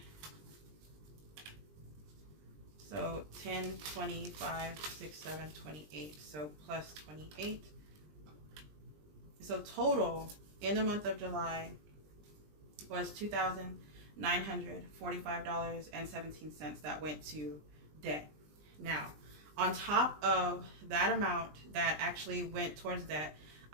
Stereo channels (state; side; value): late; left; 20 ms